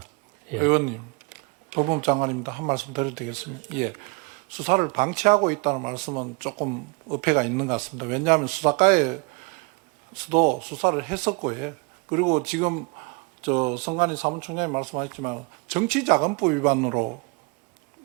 예. 의원님, 법무부 장관입니다. 한 말씀 드려도 되겠습니까? 예. 수사를 방치하고 있다는 말씀은 조금 어폐가 있는 것 같습니다. 왜냐하면 수사과에서도 수사를 했었고요. 그리고 지금 성관희 사무총장이 말씀하셨지만 정치자금법 위반으로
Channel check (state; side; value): quieter; left; 28.9 dB